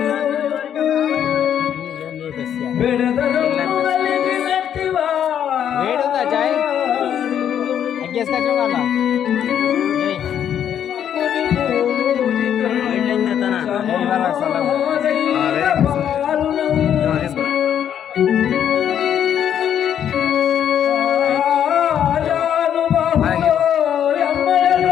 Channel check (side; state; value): right; quieter; 9.4 dB